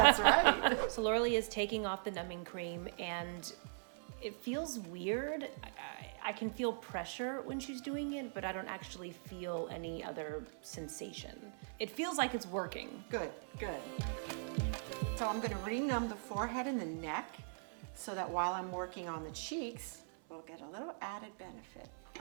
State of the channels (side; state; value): left; silent; 51 dB below the other